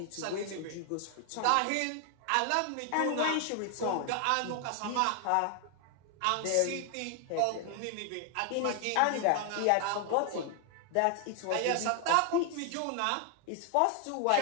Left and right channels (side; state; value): both; different; correlation 0.00